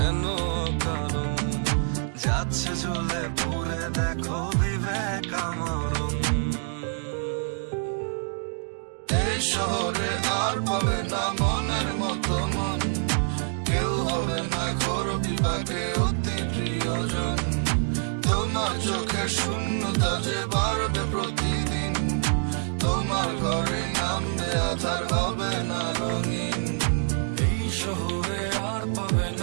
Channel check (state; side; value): silent; left; 61 dB below the other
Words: কারণ, যাচ্ছে জ্বলে পুরে দেখো বিবেক আমরণ। এই শহরে আর পাবে না মনের মতো মন, কেউ হবে না ঘোর বিপাকে অতি প্রিয়জন। তোমার চোখের শূন্যতা যে বাড়বে প্রতিদিন, তোমার ঘরে নামবে আধার, হবে না রঙিন। এই শহরে আর পাবে